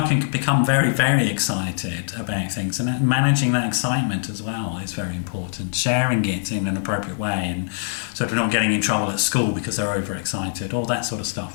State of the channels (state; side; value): silent; right; 64 dB below the other